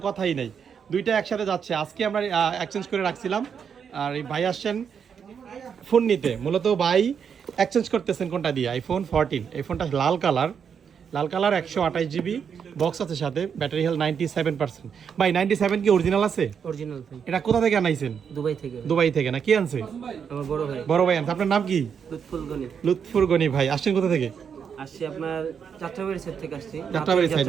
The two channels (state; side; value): quieter; left; 7.1 dB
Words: কথাই নেই। দুইটা একসাথে যাচ্ছে, আজকে আমরা এক্সচেঞ্জ করে রাখছিলাম। আর এই ভাই আসছেন ফোন নিতে, মূলত ভাই এক্সচেঞ্জ করতেছেন কোনটা দিয়ে, আইফোন 14। এই ফোনটা লাল কালার, 128 GB বক্স আছে সাথে, ব্যাটারি হেলথ 97%। ভাই 97 কি অরিজিনাল আছে? অরিজিনাল ভাই। এটা কোথা থেকে আনাইছেন? দুবাই থেকে। দুবাই থেকে না, কি আনছে? আমার বড় ভাই। বড় ভাই আনছে। আপনার নাম কি? লুৎফুল গনি। লুৎফুর গনি ভাই। আসছেন কোথা থেকে? আসছি আপনার যাত্রাবাড়ি সাইড থেকে আসছি। যাত্রাবাড়ি সাইড